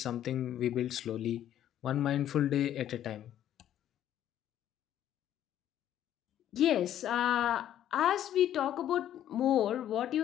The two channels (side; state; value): right; quieter; 11.3 dB